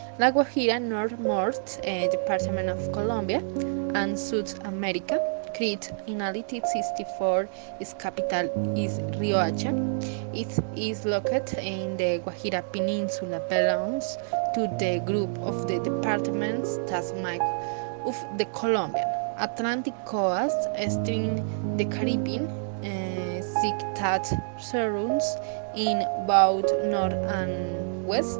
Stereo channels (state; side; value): silent; left; digital silence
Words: La Guajira, northmost department of Colombia and South America, created in 1864. Its capital is Riohacha. It is located in the Guajira Peninsula, belongs to the group of the departments that make of the Colombian Atlantic coast, string the Caribbean, sea that surrounds in both north and